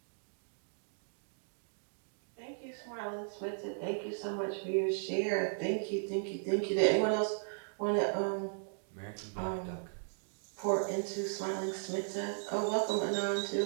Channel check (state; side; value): silent; left; digital silence